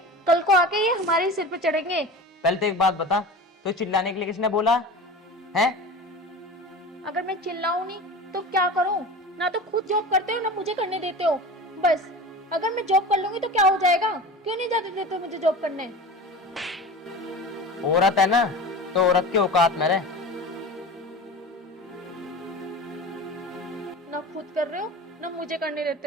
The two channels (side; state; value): both; normal; correlation 0.33